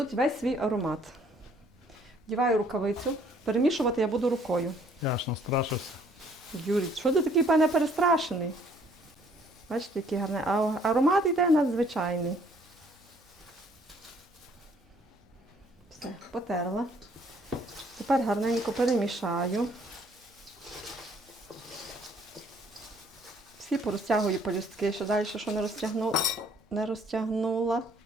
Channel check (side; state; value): both; normal; correlation 0.61